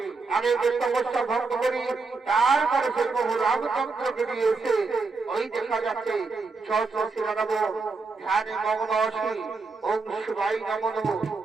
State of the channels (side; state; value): left; quieter; 4.2 dB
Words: আমি তপস্যা ভঙ্গ করি, তারপরে সেই বহু রামচন্দ্রকে নিয়ে এসে ওই দেখা যাচ্ছে সহস্রী লাগাবো, ধ্যানে মগ্ন আসি, ওম শিবাই নমঃ নমঃ